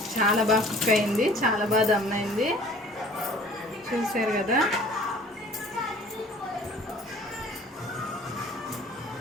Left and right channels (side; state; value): both; normal; correlation 0.50